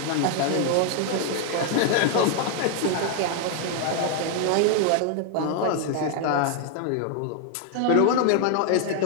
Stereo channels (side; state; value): both; different; correlation 0.00